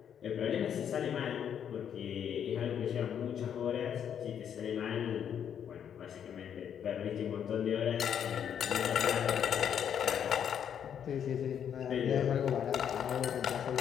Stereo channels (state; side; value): quieter; right; 8.7 dB